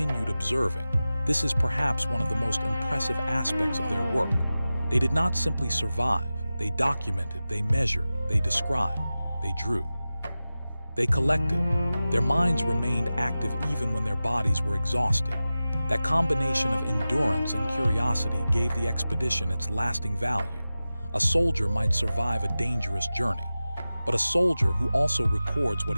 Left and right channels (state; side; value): inverted; both; correlation -0.95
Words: observing. This is perhaps one of the most impressive aspects of their work. They did not simply survive. They documented, they measured, they described, they drew. They collected. Their minds remained active even when their bodies were exhausted. That combination of endurance and curiosity gave the expedition its lasting value. A soldier might survive a dangerous journey, but a soldier who also records what